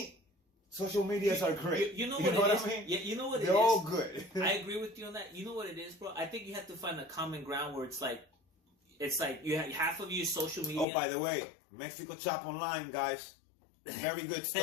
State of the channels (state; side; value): drops out; right; at 10.9 s